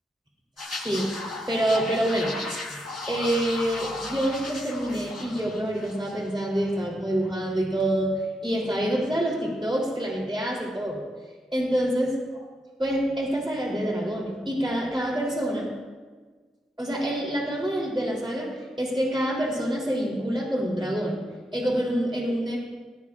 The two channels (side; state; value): both; normal; correlation 0.81